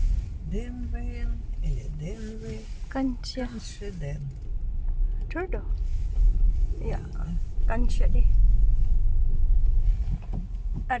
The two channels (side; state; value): both; identical; correlation 1.00